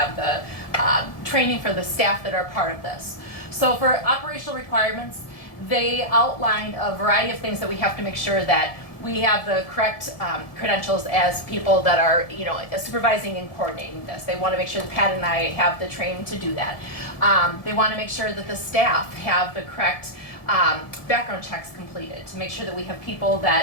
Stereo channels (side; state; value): right; late; 1.8 ms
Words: the training for the staff that are part of this. So for operational requirements, they outlined a variety of things that we have to make sure that we have the correct credentials as people that are, supervising and coordinating this. They want to make sure that Pat and I have the training to do that. They want to make sure that the staff have the correct background checks completed to make sure that we have people